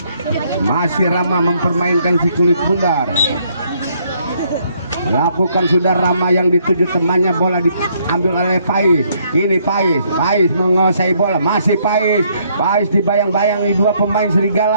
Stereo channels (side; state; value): both; inverted; correlation -0.69